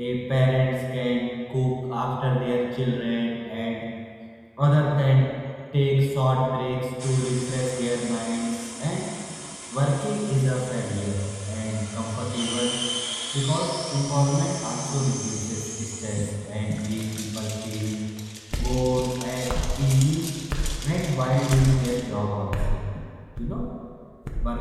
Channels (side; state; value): both; identical; correlation 1.00